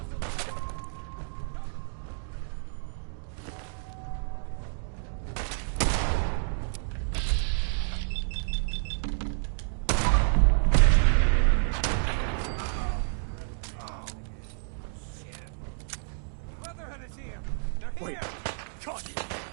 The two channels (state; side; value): silent; left; digital silence